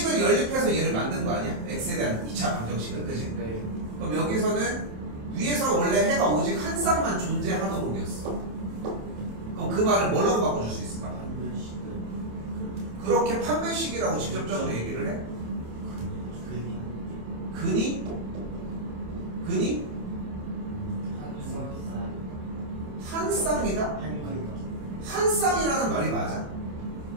연립해서 얘를 만든 거 아니야? x에 대한 2차 방정식을. 그지? 네. 그럼 여기서는 위에서 원래 해가 오직 한 쌍만 존재하도록이었어. 그럼 그 말을 뭐라고 바꿔줄 수 있을까? 그렇게 판별식이라고 직접적으로 얘기를 해? 근이? 한 쌍이다? 한 쌍이라는 말이 맞아?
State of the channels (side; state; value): left; late; 27 ms